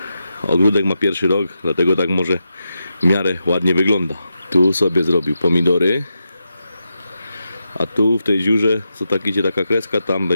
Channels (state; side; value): inverted; both; correlation -0.87